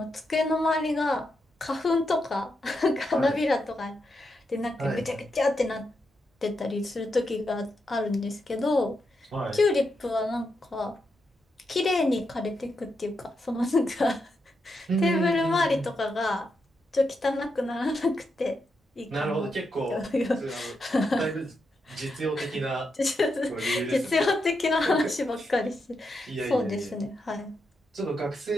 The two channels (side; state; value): both; normal; correlation 0.84